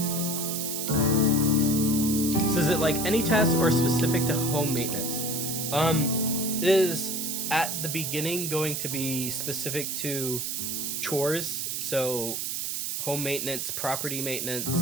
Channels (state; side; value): noise; right; hiss, 2 dB below the sound